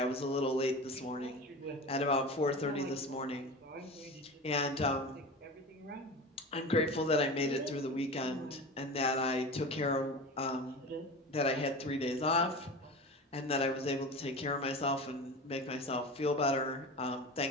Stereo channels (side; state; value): both; normal; correlation 0.31